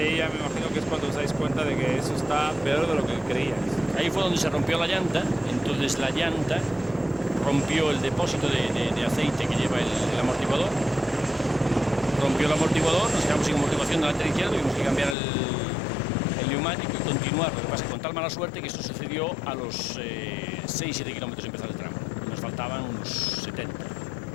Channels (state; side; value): drops out; right; at 15.2 s